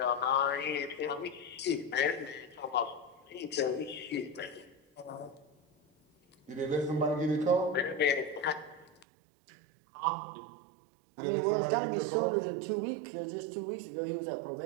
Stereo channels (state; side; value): drops out; left; at 9.1 s